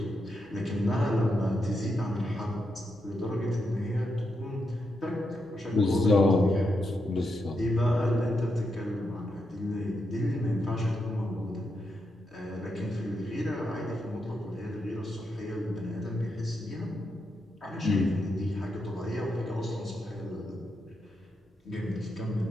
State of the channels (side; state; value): both; normal; correlation 0.83